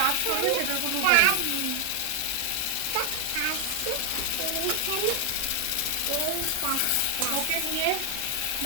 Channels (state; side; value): different; both; correlation 0.00